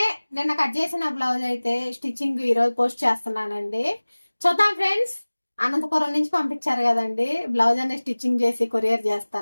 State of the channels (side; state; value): both; inverted; correlation -1.00